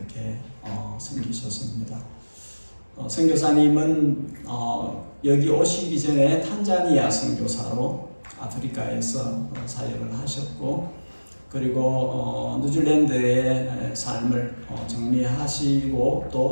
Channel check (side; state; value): both; inverted; correlation -1.00